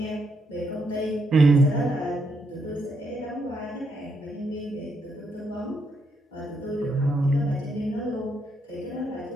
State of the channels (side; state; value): both; normal; correlation 0.77